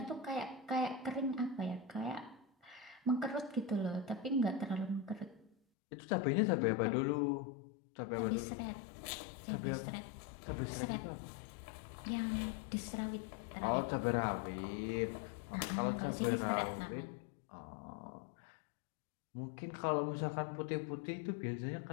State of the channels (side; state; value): right; drops out; at 5.6 s